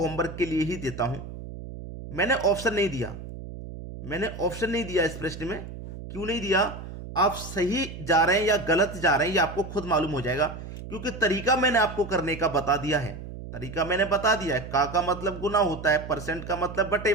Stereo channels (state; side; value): noise; right; hum, 11 dB below the sound